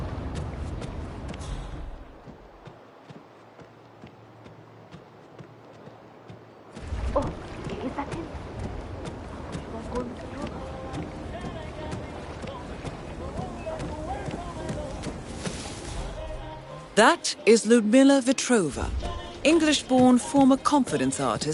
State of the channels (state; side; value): identical; both; correlation 1.00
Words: That is Ludmila Vetrova, English-born former confidence